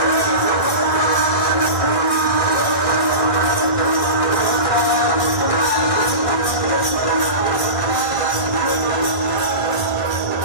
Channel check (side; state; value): right; late; 1.6 ms